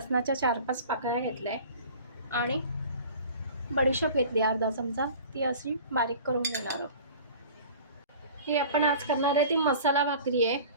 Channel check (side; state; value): both; inverted; correlation -0.42